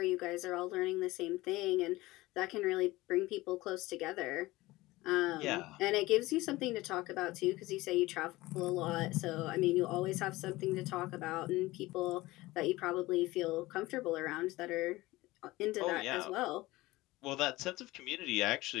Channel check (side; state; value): right; quieter; 19.2 dB